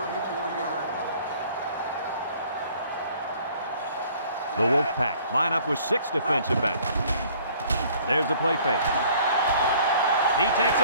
the 34-yard line. The Wolfpack line up with 6 defensive backs. There's the play fake. He takes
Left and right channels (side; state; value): both; inverted; correlation -0.55